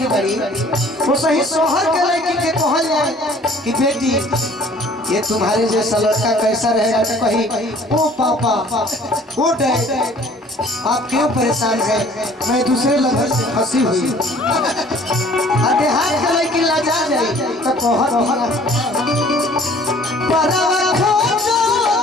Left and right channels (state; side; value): normal; both; correlation 0.53